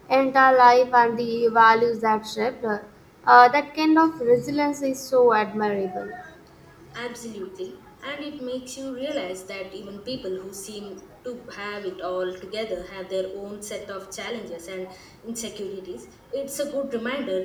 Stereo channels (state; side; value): identical; both; correlation 1.00